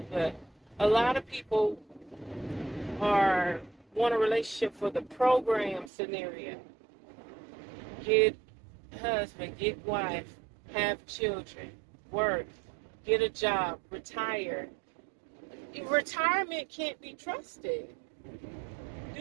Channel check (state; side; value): drops out; left; at 5.9 s